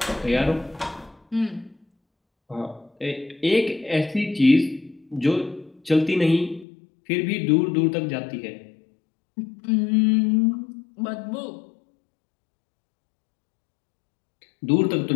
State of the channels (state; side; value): drops out; right; at 6.7 s